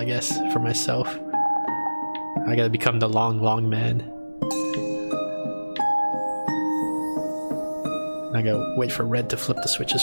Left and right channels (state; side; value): inverted; both; correlation -1.00